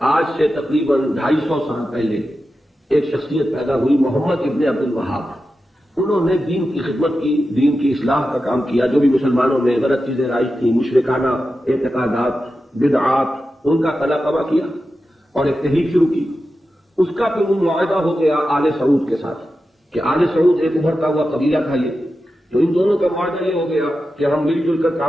سے تقریباً 250 سال پہلے ایک شخصیت پیدا ہوئی، محمد ابن عبد الوہاب۔ انہوں نے دین کی خدمت کی، دین کی اصلاح کا کام کیا۔ جو بھی مسلمانوں میں غلط چیزیں رائج تھیں، مشرکانہ اعتقادات، بدعات، ان کا قلع قبا کیا اور ایک تحریک شروع کی۔ اس کا پھر وہ معاہدہ ہو گیا آل سعود کے ساتھ کہ آل سعود ایک ابھرتا ہوا قبیلہ تھا یہ، تو ان دونوں کا معاہدہ یہ ہو گیا کہ ہم مل جل کر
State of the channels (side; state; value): both; normal; correlation 0.91